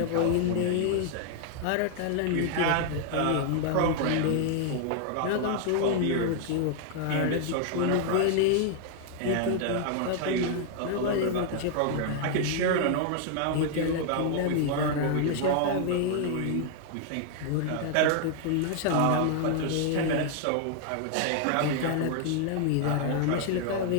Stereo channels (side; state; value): both; different; correlation 0.00